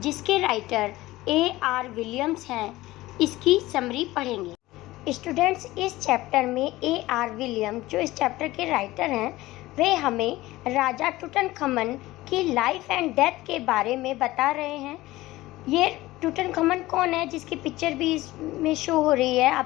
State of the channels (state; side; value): quieter; right; 18.0 dB